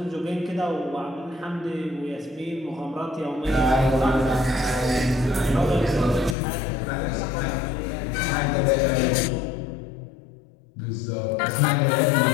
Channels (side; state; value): right; drops out; at 6.4 s